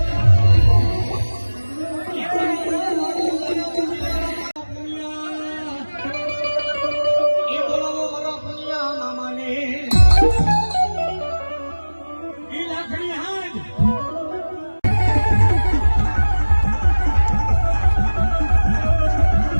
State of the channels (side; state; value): both; inverted; correlation -1.00